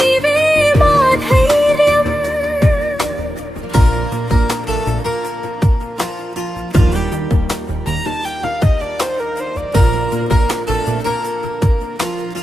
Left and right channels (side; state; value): both; normal; correlation 0.90